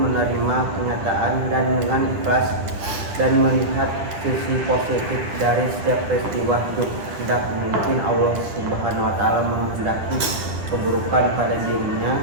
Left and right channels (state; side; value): late; left; 9.6 ms